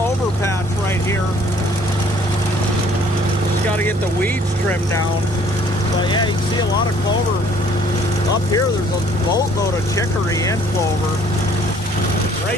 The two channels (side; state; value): both; normal; correlation 0.59